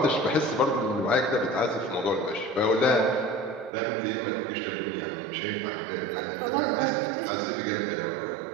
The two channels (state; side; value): drops out; left; at 3.7 s